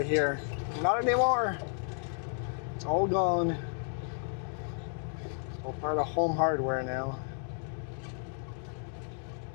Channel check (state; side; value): silent; right; 56 dB below the other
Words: here. Not anymore. It's all gone. It's all part of Home Hardware now.